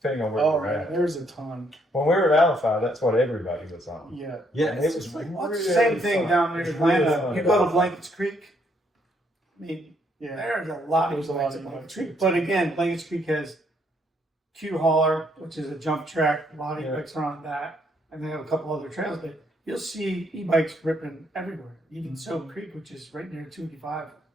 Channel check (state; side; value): normal; both; correlation 0.71